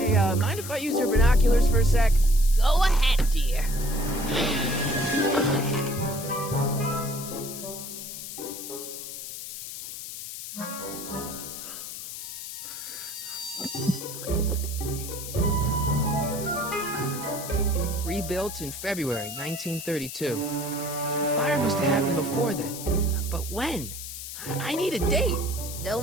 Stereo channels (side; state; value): left; noise; hiss, 9 dB below the sound